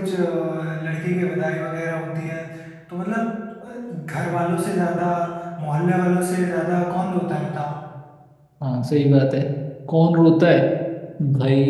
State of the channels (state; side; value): identical; both; correlation 1.00